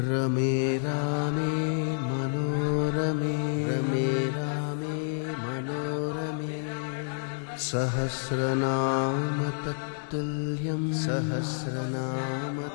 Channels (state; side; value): silent; right; digital silence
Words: रमे रामे मनोरमे रमे रामे मनोरमे सहस्रनाम तत्तुल्यं सहस्रनाम